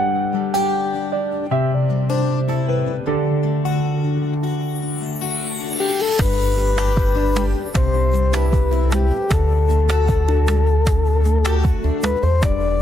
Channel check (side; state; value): both; normal; correlation 0.81